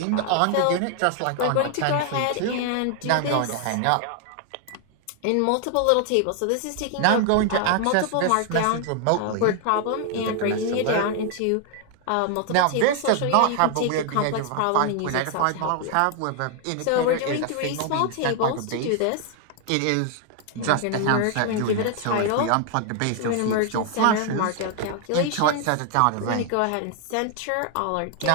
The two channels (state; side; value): different; both; correlation 0.00